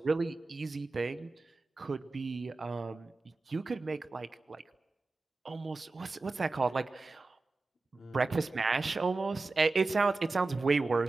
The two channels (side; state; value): left; quieter; 3.6 dB